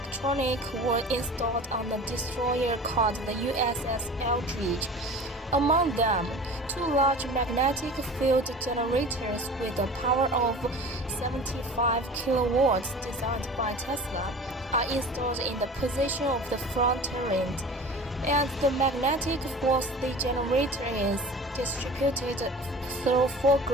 were installed on the destroyer called the USS Eldridge. Among them, 2 large magnetic field generators with a power of 75 kilowatts designed by Tesla are installed in the position of the front turret, and the magnetic force the generator is distributed through 4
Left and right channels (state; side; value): normal; both; correlation 0.39